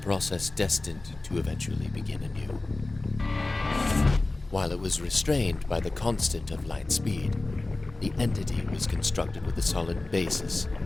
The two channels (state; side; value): quieter; right; 3.1 dB